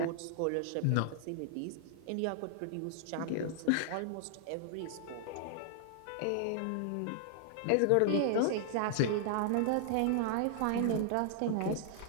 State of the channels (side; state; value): both; different; correlation 0.00